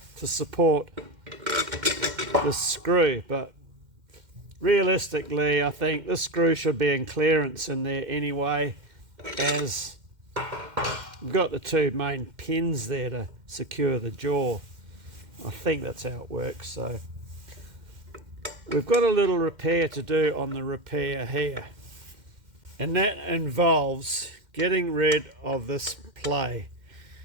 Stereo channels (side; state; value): left; late; 2.1 ms